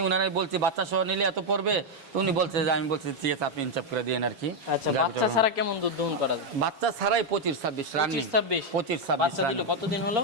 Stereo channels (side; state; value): left; late; 7.2 ms